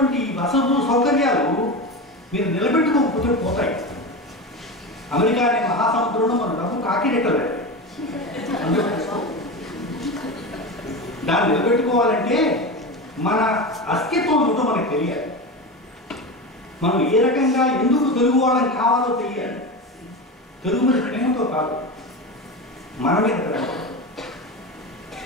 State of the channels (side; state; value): both; normal; correlation 0.23